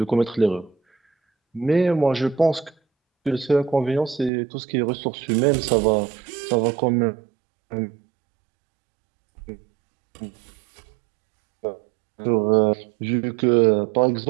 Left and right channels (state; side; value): drops out; left; at 4.3 s